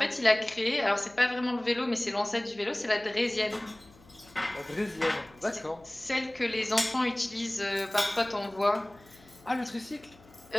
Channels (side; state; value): left; noise; hum, 26 dB below the sound